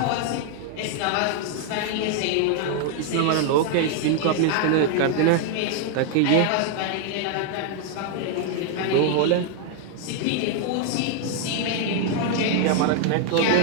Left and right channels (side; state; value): both; different; correlation 0.00